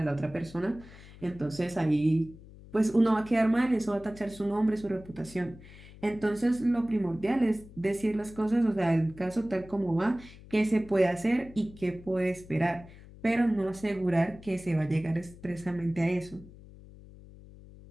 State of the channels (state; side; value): noise; left; hum, 19 dB below the sound